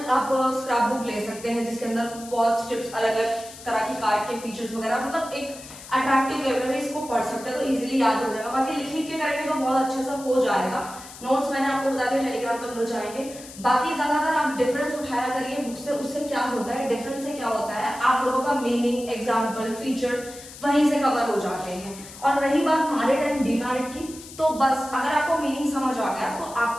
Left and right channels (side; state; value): left; noise; hiss, 16 dB below the sound